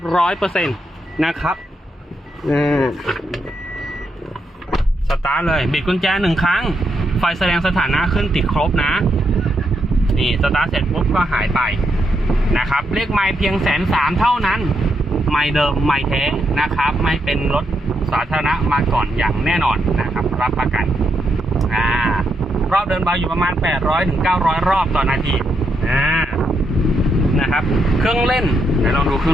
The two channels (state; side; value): normal; both; correlation 0.80